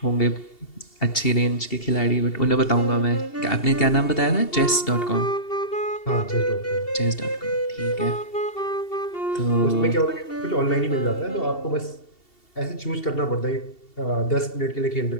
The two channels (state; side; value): late; right; 2.7 ms